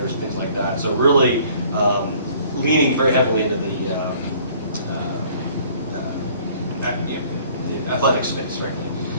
and things like that. So really leaning very heavily into the athletic space, frankly.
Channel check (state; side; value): inverted; both; correlation -0.56